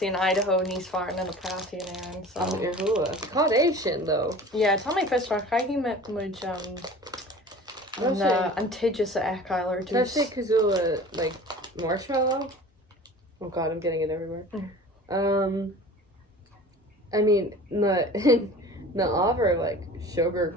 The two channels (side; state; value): both; normal; correlation 0.41